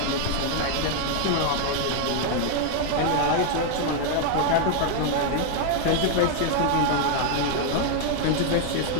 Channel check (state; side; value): different; both; correlation 0.00